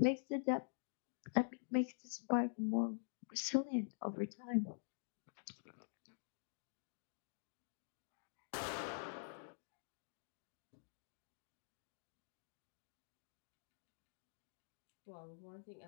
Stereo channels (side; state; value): right; silent; digital silence